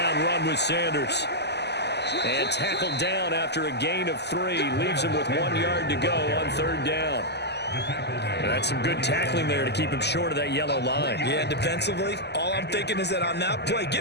run with Sanders. And tackled down after a gain of 3. Leaves him with 1 yard to go on 3rd down. And that's some good tackling there to keep him short of that yellow line. Yeah, defensively, all I'm thinking is that on that play,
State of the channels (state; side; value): late; right; 0.49 ms